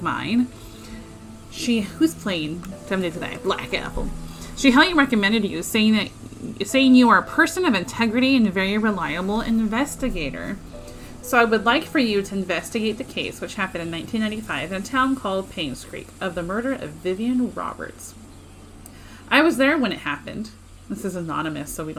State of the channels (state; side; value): identical; both; correlation 1.00